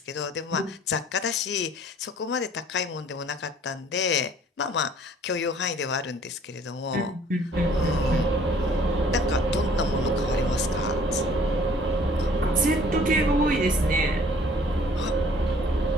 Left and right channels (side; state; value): both; normal; correlation 0.55